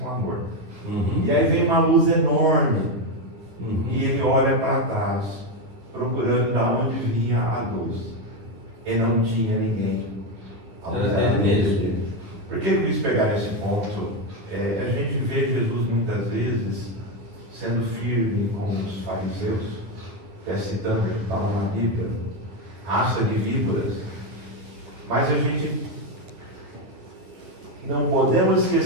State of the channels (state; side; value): late; left; 9.8 ms